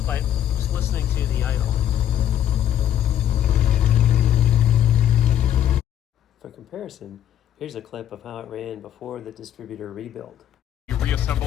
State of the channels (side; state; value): right; quieter; 10.6 dB